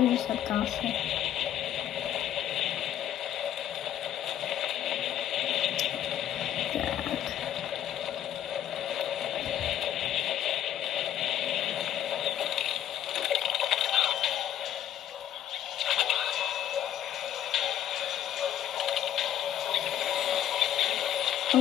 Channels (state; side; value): quieter; right; 11.1 dB